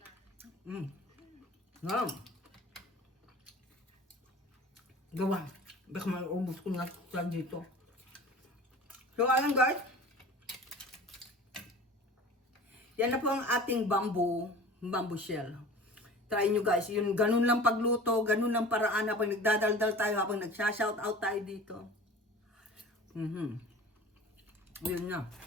Wow. Gawa. Baka maubos ko na sa dito. So, ayan guys. Yan na po ang ating bamboo shell. Try nyo guys. Yun, ganun lang pagluto, ganun lang paraan habang nagdadaldal tayo, habang nagsha-shout out tayo dito. Yun na.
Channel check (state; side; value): normal; both; correlation 0.40